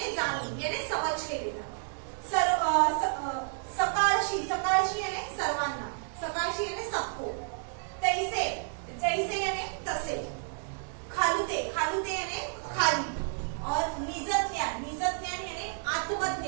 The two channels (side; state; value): left; silent; digital silence